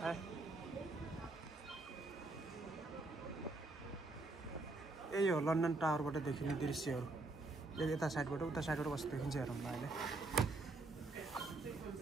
हाय। यही हो लन्डन टावरबाट देखिने दृश्यहरू। यता साइडबाट उता साइडबाट कस्तो देखिन्छ हेरौँ ल अहिले।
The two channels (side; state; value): left; quieter; 3.1 dB